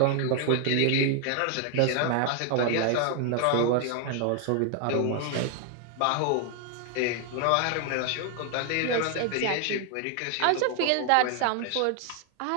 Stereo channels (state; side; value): different; both; correlation 0.00